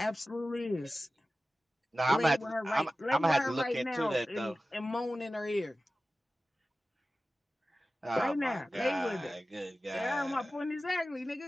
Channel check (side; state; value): both; normal; correlation 0.95